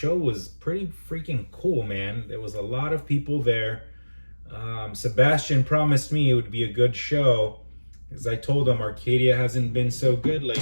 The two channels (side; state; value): both; inverted; correlation -1.00